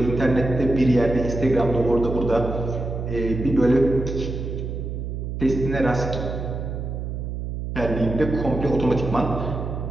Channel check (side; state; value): right; noise; hum, 5 dB below the sound